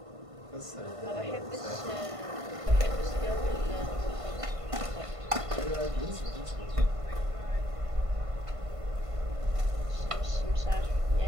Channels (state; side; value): late; left; 1.5 ms